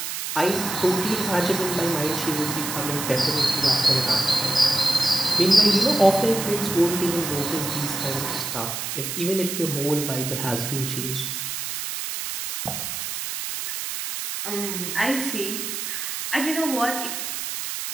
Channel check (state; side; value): noise; right; hiss, 4 dB below the sound